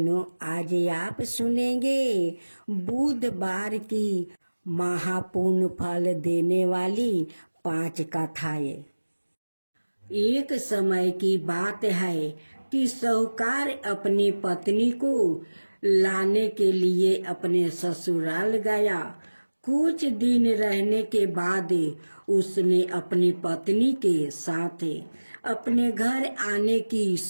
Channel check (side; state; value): both; inverted; correlation -1.00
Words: आज आप सुनेंगे बुधवार की महापुण्य फल देने वाली 5 कथाएं। एक समय की बात है कि साहूकार अपनी पत्नी को लाने के लिए अपने ससुराल गया। कुछ दिन रहने के बाद उसने अपनी पत्नी के साथ अपने घर आने की